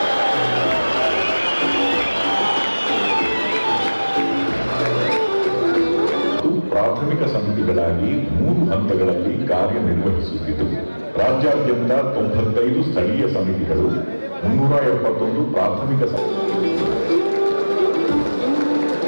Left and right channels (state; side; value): inverted; both; correlation -1.00